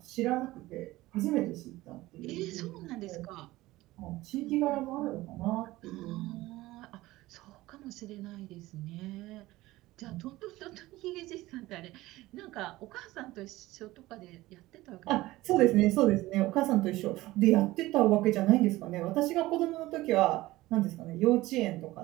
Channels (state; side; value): quieter; left; 18.1 dB